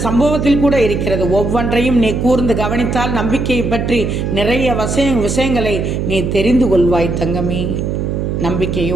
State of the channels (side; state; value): right; noise; hum, 1 dB below the sound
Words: சம்பவத்தில் கூட இருக்கிறது. ஒவ்வொன்றையும் நீ கூர்ந்து கவனித்தால் நம்பிக்கையை பற்றி நிறைய விஷயங்களை நீ தெரிந்து கொள்வாய் தங்கமே.